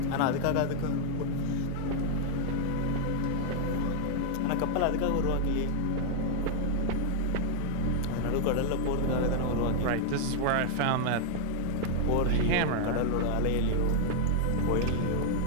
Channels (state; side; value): different; both; correlation 0.00